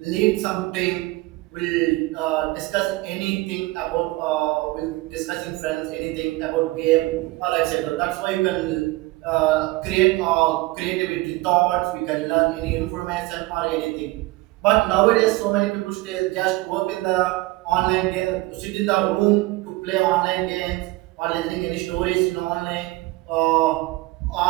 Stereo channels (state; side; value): quieter; left; 20.3 dB